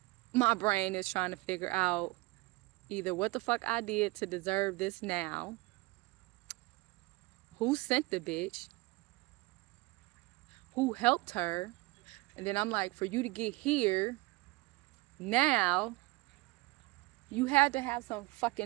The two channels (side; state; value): left; quieter; 22.7 dB